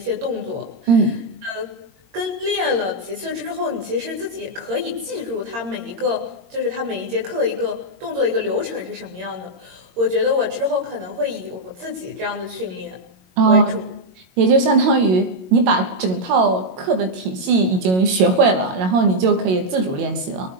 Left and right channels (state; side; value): late; left; 22 ms